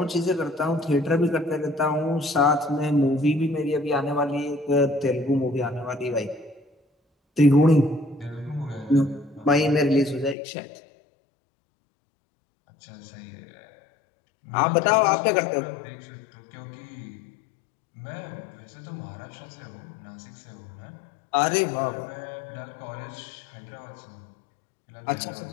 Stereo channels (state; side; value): drops out; right; at 10.4 s